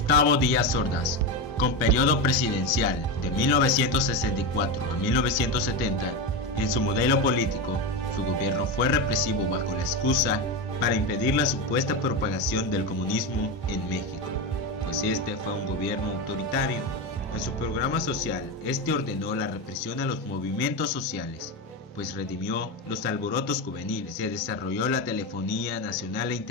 Díaz Ordaz, con periodo presidencial de 1964 a 1970, en su modelo político, su gobierno fue represivo bajo la excusa para impedir la supuesta propagación del comunismo en México, pues este fue un gobierno autoritario. En su programa social, este ordenó la represión a los movimientos sociales, pues redimió los alborotos juveniles, se desarrolló la telefonía nacional e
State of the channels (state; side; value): normal; both; correlation 0.15